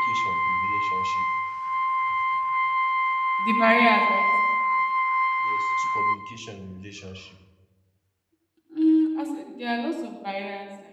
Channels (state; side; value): identical; both; correlation 1.00